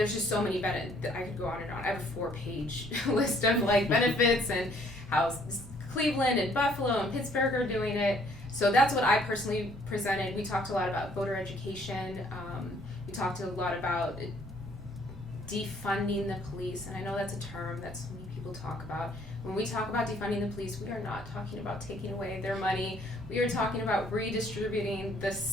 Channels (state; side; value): normal; both; correlation 0.62